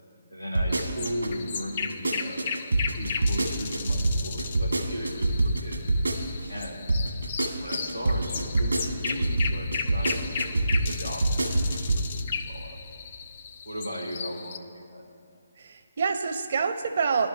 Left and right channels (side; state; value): both; inverted; correlation -0.84